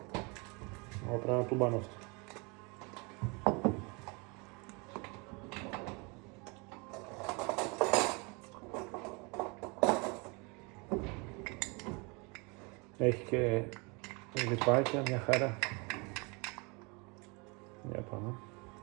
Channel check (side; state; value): left; quieter; 29.8 dB